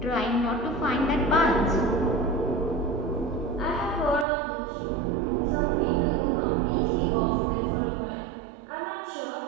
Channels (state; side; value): drops out; left; at 4.2 s